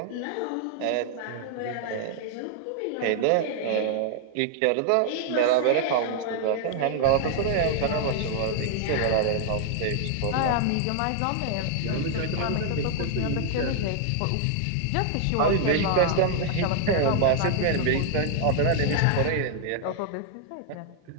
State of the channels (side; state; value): both; different; correlation 0.00